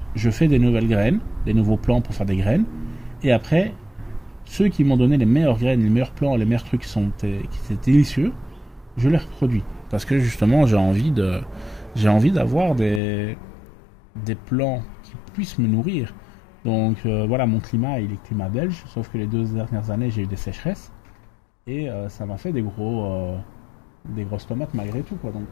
je fais des nouvelles graines, des nouveaux plants pour faire des graines. Et après, ceux qui m'ont donné les meilleures graines, les meilleurs plants, les meilleurs trucs qui étaient délicieux, je les reproduis. Parce que justement j'ai envie j'ai envie d'avoir des plants qui puissent me nourrir. Donc voilà, mon climat, il est climat belge, sauf que les 2 dernières années, j'ai eu des sécheresses. Et ça m'a fait des grosses tomates malgré tout, quoi. Donc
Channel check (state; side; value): drops out; right; at 13.0 s